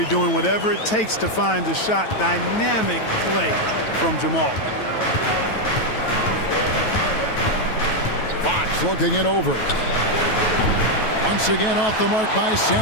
doing whatever it takes to find the shot. Dynamic play from Jamal. Fox looking it over. Once again off the mark by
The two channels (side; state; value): right; late; 9.2 ms